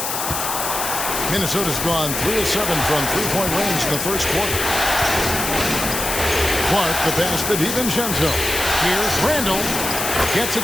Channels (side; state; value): left; noise; hiss, 3 dB below the sound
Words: Minnesota's gone 3 of 7 from three-point range in the first quarter. Clark the pass to DiVincenzo. Here's Randall. Gets